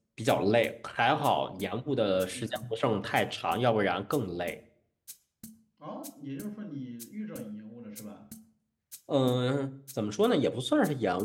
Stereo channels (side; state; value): both; identical; correlation 1.00